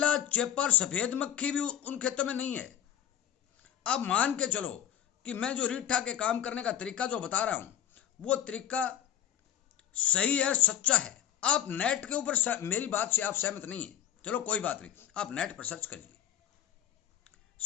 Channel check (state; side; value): quieter; right; 10.3 dB